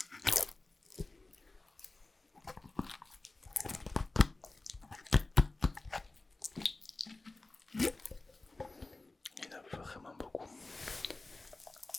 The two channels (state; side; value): quieter; right; 3.1 dB